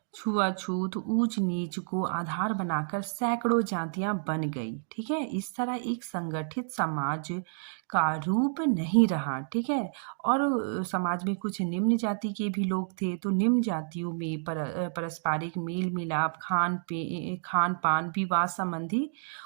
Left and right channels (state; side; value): silent; left; digital silence